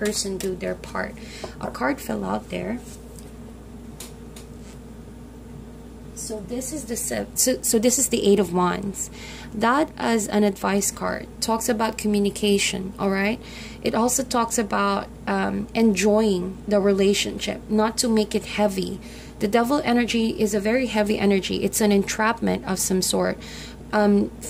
do their part. A card fell out there. So this is the Eight of Wands. That, as an advice card, talks about communication. All right. It also talks about enjoying the relationship, not to make it heavy. The Devil energy is a very heavy energy. It's an entrapment of some sort.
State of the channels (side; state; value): both; identical; correlation 1.00